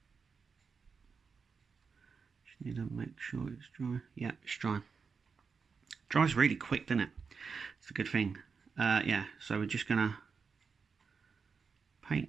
just need to make sure it's dry. Yeah, it's dry. Dries really quick, doesn't it? It's a good thing. Yeah, so we're just going to paint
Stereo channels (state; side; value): quieter; left; 5.4 dB